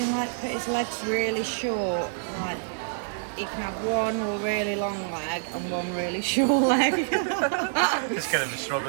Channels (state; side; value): silent; left; digital silence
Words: like put his legs really short. Like he can have one really long leg and one really short leg. Just going to be